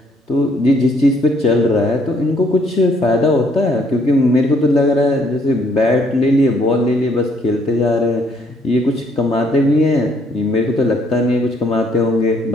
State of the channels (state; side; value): normal; both; correlation 0.67